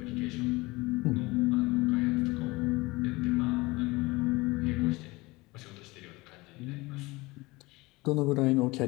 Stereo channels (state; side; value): quieter; right; 22.3 dB